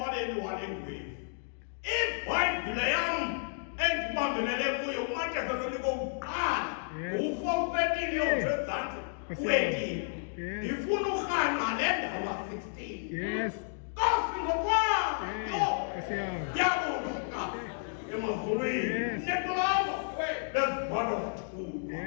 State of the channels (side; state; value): right; silent; digital silence